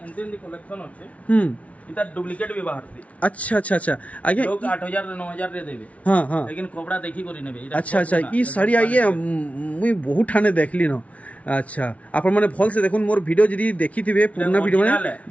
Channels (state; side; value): late; right; 0.066 ms